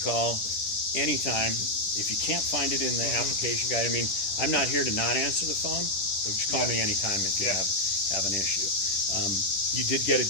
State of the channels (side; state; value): right; late; 10 ms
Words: anytime. If you can't find it in the application guide, I mean, I'm not here to not answer the phone, so just call me anytime if you have an issue. You did get a